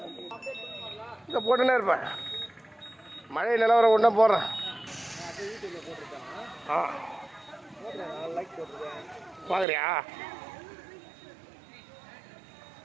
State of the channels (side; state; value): left; drops out; at 9.7 s